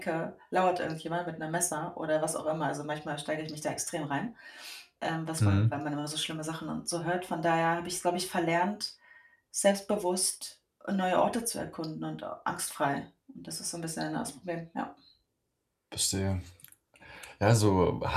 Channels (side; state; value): both; identical; correlation 1.00